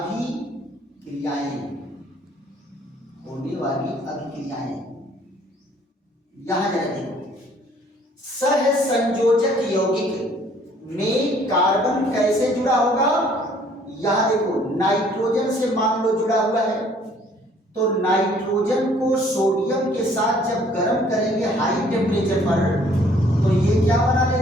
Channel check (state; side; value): normal; both; correlation 0.59